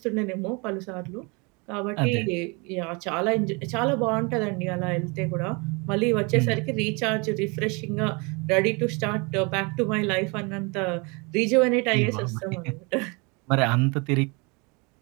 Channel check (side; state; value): left; quieter; 29.8 dB